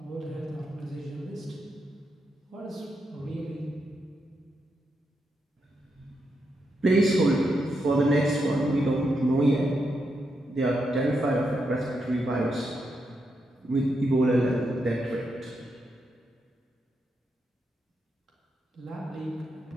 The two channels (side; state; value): both; normal; correlation 0.83